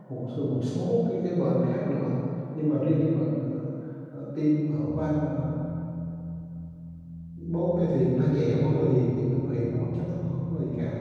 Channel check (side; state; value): both; identical; correlation 1.00